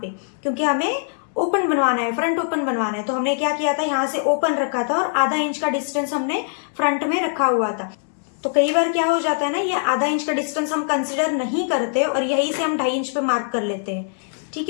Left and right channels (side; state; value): right; silent; digital silence